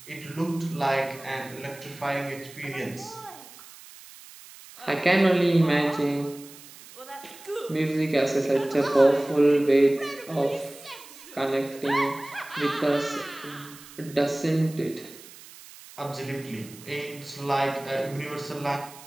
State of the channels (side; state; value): right; noise; hiss, 19 dB below the sound